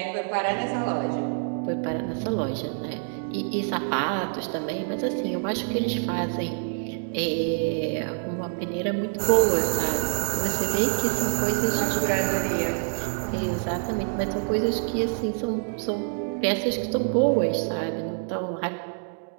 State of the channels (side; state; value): left; silent; digital silence